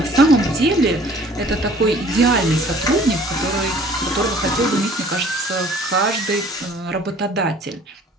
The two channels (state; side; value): normal; both; correlation 0.53